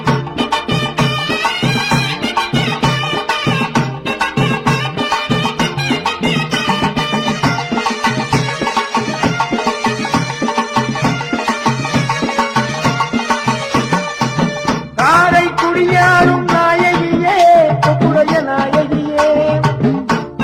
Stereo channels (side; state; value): both; identical; correlation 1.00